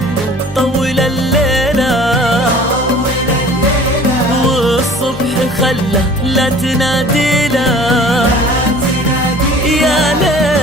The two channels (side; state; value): both; normal; correlation 0.47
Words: طول الليلة، والصبح خله لا تنادي له. يا